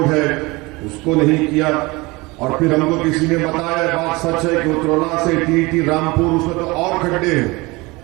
है उसको नहीं किया? और फिर हमको किसी ने बताया, बात सच है कि उत्तरला से टीटी रामपुर, उसमें तो और खड्डे हैं,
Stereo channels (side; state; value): left; quieter; 23.6 dB